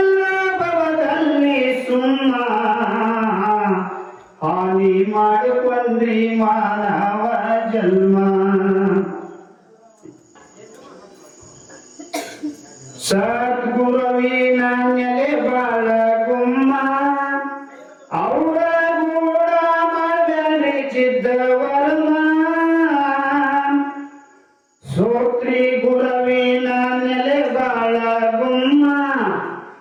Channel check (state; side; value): identical; both; correlation 1.00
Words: ಭವದಲ್ಲಿ ಸುಮ್ಮ ಹಾನಿ ಮಾಡಿಕೊಂಡ್ರಿ ಮಾನವ ಜನ್ಮ. ಸದ್ಗುರುವಿನ ನೆಲೆ ಬಾಳ ಗುಮ್ಮ, ಅವರ ಗೂಡ ಮಾಡಲಿಚಿದ್ದ ವರ್ಮ. ಸೋತ್ರಿ ಗುರುವಿನ ನೆಲೆ ಬಾಳ ಗುಮ್ಮ,